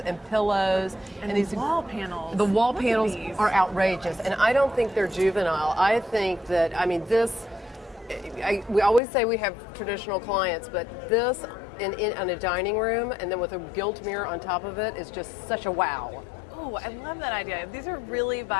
and pillows. And these wall panels. The wall Look at panels these. are outrageous, and I don't think they're juvenile. I think that, I mean, this. We always say we have traditional clients, but this in a dining room and then with a gilt mirror on top of it is just such a wow. Oh, I love that idea. These are really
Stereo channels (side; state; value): right; drops out; at 9.0 s